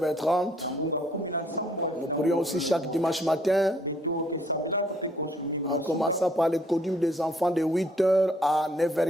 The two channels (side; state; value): both; normal; correlation 0.64